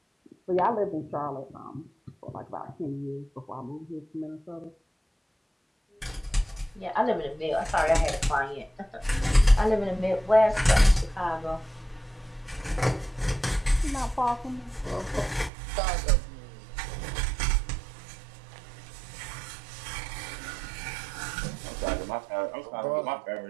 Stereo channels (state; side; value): drops out; left; at 15.5 s